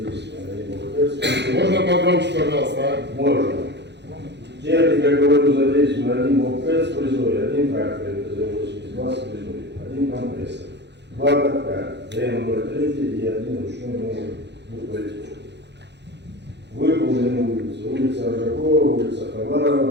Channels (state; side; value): late; left; 0.50 ms